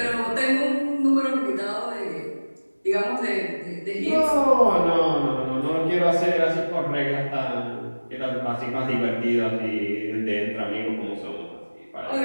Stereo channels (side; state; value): both; inverted; correlation -1.00